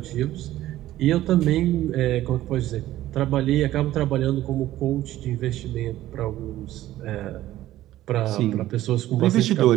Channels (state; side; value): quieter; left; 14.5 dB